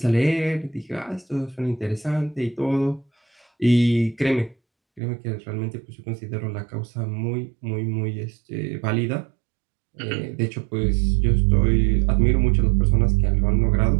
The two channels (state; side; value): drops out; left; at 5.0 s